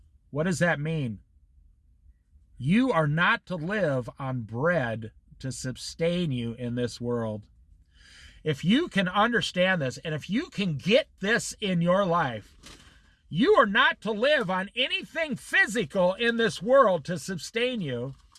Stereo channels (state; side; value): identical; both; correlation 1.00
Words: What does that mean? You are not to live on bread to sustain you in this world. If you can understand this, and if you can get this in your life, you are not to live on anything physical in this world to sustain you.